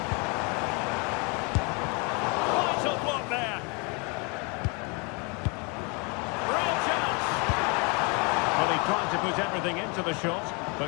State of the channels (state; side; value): quieter; right; 32.0 dB